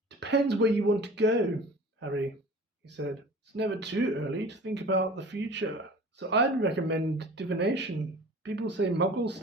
"Depends where you want to go, Harry," he said. "It's never too early to think about the future. So I'd recommend divination. People say Muggle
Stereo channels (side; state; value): both; normal; correlation 0.42